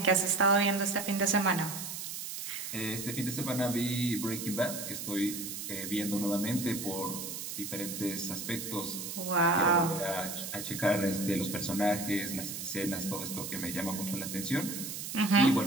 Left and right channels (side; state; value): right; noise; hiss, 7 dB below the sound